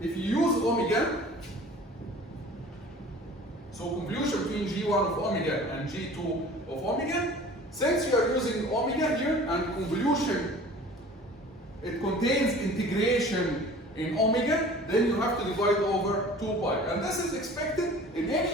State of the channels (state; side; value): normal; both; correlation 0.45